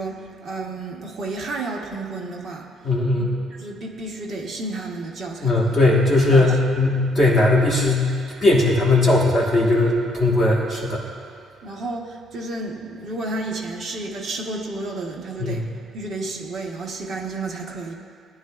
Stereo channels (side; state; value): both; normal; correlation 0.67